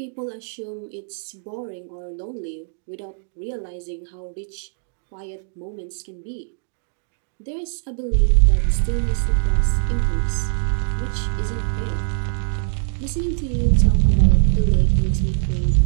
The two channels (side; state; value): left; silent; digital silence